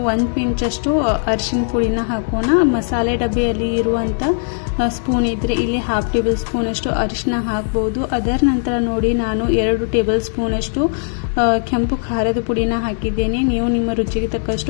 1 ಪಿಂಚಷ್ಟು ಅರಿಶಿನ ಪುಡಿನ ಹಾಕೋಣ. ಮಸಾಲೆ ಡಬ್ಬಿಯಲ್ಲಿ ಇರುವಂಥ ಸ್ಪೂನ್ ಇದ್ದರೆ ಇಲ್ಲಿ 1/2 ಟೇಬಲ್ ಸ್ಪೂನಷ್ಟು ಅರಿಶಿನ ಹಾಕ್ಬೋದು. ಅದರ ನಂತರ ನೋಡಿ, ನಾನು 2 ಟೇಬಲ್ ಸ್ಪೂನಷ್ಟು ಕೆಂಪು ಖಾರದ ಪುಡಿನ ಹಾಕಿದ್ದೇನೆ. ನೀವು ನಿಮ್ಮ ರುಚಿಗೆ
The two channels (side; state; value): right; silent; digital silence